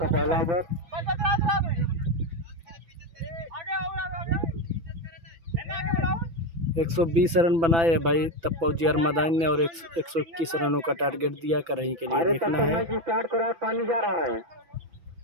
120 रन बनाए है भाई तप्पा उजियार मैदान ने और 121 रनों का टारगेट दिया करही के लिए। देखना है पानी जा रहा है।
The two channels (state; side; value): late; left; 6.1 ms